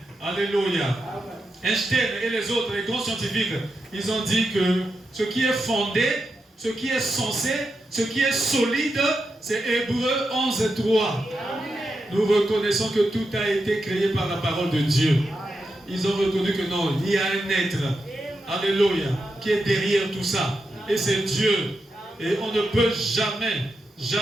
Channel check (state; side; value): normal; both; correlation 0.87